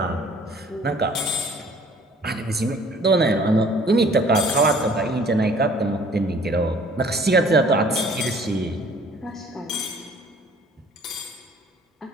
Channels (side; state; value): both; normal; correlation 0.54